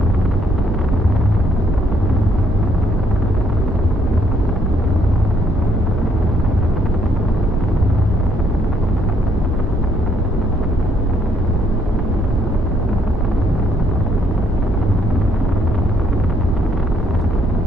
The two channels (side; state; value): both; normal; correlation 0.69